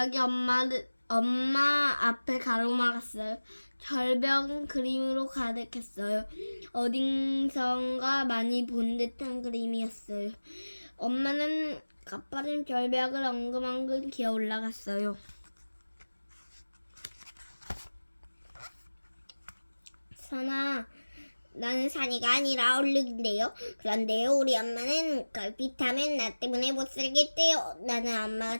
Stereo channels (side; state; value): both; inverted; correlation -1.00